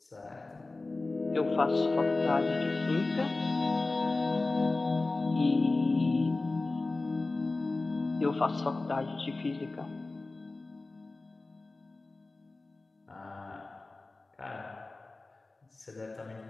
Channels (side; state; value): right; quieter; 3.3 dB